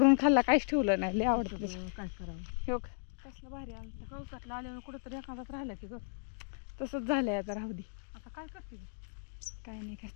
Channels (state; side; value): silent; right; digital silence